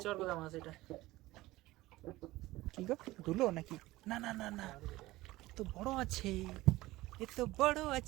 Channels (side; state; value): left; quieter; 18.2 dB